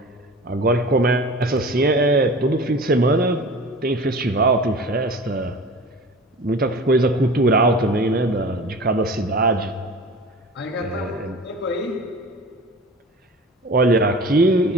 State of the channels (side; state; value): both; normal; correlation 0.38